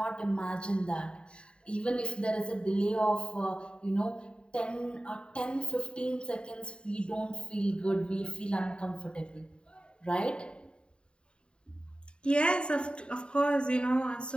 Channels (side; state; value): right; late; 0.052 ms